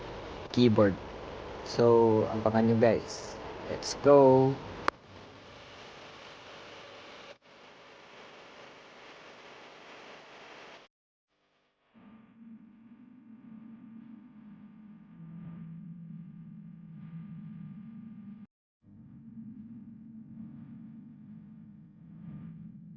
keyboard. So, abangan nyo guys. Let's go!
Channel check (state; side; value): identical; both; correlation 1.00